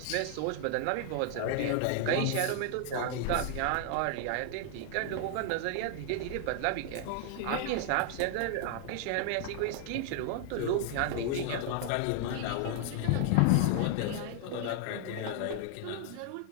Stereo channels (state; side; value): different; both; correlation 0.00